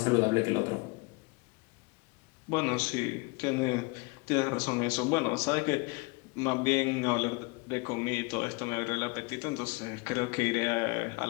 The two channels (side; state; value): right; quieter; 27.9 dB